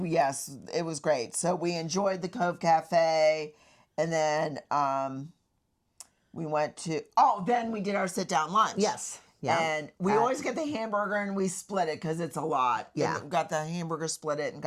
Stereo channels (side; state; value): both; identical; correlation 1.00